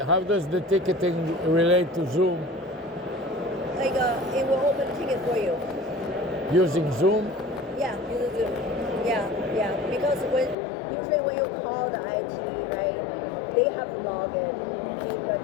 how does the ticketing relate to Zoom? Like it will open a ticket for you. Using Zoom? Yeah, use Zoom. Yeah. Because usually when you call the IT, right, they have to log in the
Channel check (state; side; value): drops out; right; at 10.6 s